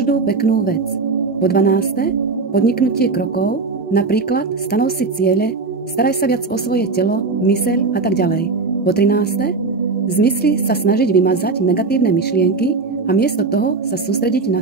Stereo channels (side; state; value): left; quieter; 4.1 dB